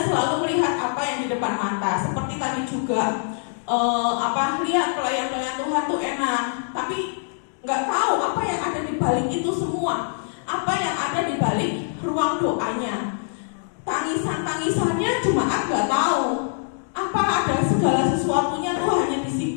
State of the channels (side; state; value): right; silent; 63 dB below the other